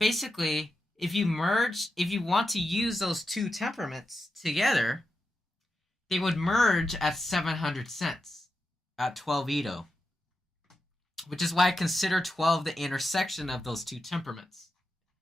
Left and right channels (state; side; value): normal; both; correlation 0.89